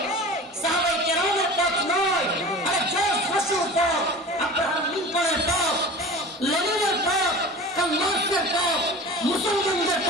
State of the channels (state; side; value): normal; both; correlation 0.37